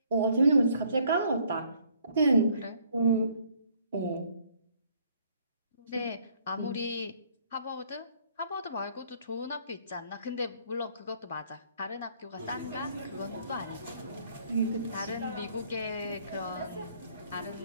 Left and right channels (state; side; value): inverted; both; correlation -0.63